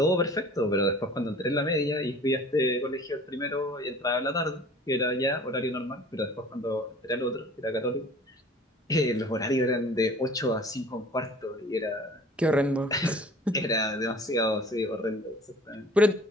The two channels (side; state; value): both; normal; correlation 0.47